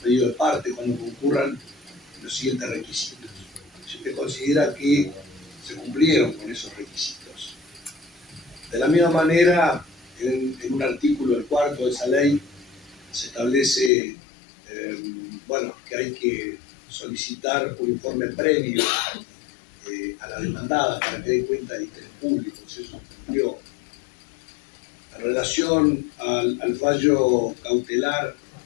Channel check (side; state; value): right; drops out; at 13.9 s